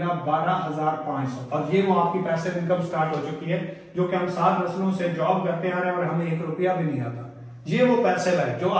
12,500 और ये वो आपकी पैसिव इनकम स्टार्ट हो चुकी है, जो कि हम 7 नस्लों से जॉब करते आ रहे हैं और हमें 1 रुपया भी नहीं आता। ये वो पैसिव है जो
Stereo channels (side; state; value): both; identical; correlation 1.00